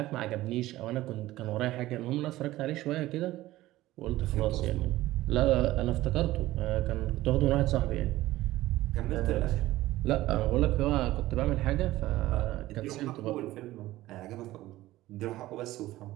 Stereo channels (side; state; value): left; quieter; 16.4 dB